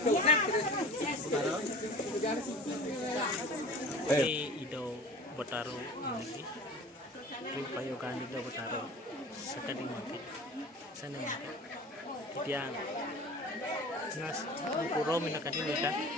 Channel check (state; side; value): normal; both; correlation 0.40